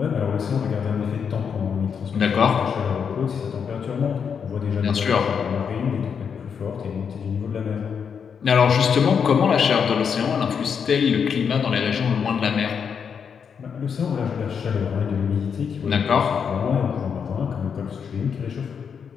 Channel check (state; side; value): quieter; right; 6.8 dB